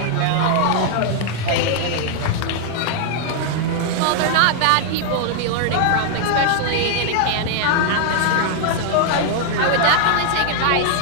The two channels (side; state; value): both; different; correlation 0.00